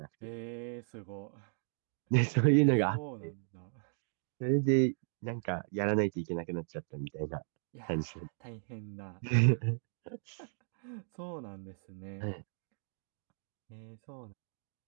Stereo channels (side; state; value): left; silent; digital silence